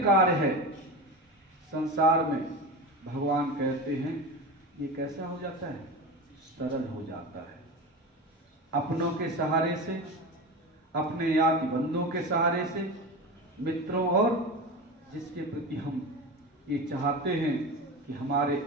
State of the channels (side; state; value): both; normal; correlation 0.25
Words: कार्य है संसार में, भगवान कहते हैं ये कैसा हो जाता है? सरल हो जाता है। अपनों के सहारे से, अपने याद बंधुओं के सहारे से, मित्रों और जिसके प्रति हम ये चाहते हैं कि हमारे